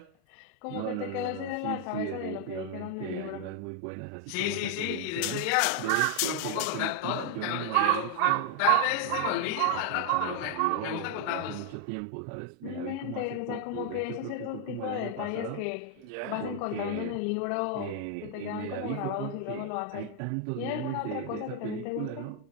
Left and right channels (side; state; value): both; different; correlation 0.00